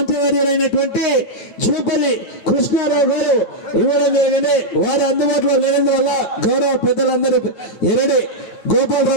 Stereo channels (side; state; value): right; late; 9.5 ms